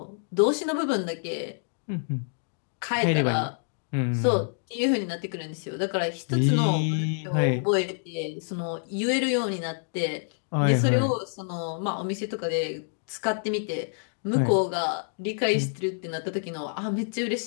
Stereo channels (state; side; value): silent; right; digital silence